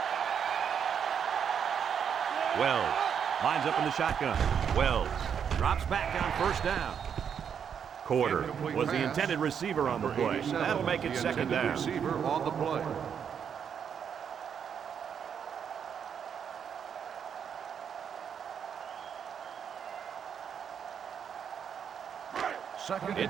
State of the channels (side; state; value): left; quieter; 7.7 dB